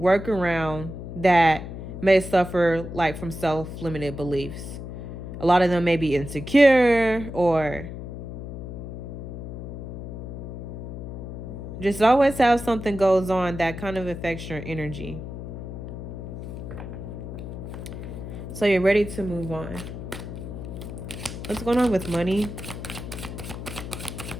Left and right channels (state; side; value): noise; left; hum, 9 dB below the sound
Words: around that may suffer like from self-limited beliefs. A lot of them may be insecure or just always have something goes on that kind of affects your energy. So you're ready to move on. What's going on with money?